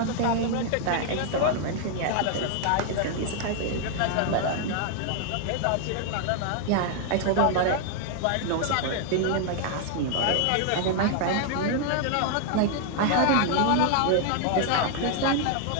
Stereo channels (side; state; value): both; different; correlation 0.00